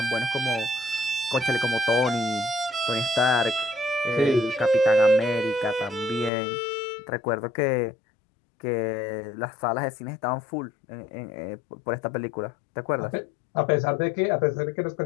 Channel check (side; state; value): right; drops out; at 6.3 s